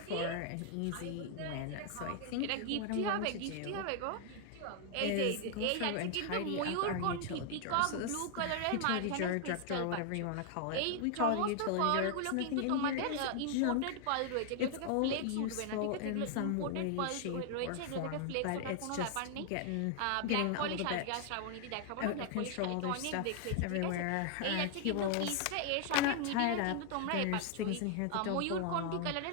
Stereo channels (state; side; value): different; both; correlation 0.00